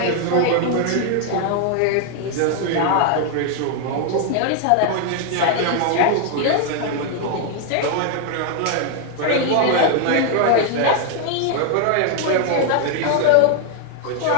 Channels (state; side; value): different; both; correlation 0.00